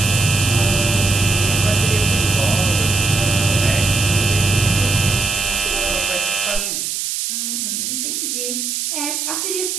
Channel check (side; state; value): right; noise; hiss, 2 dB below the sound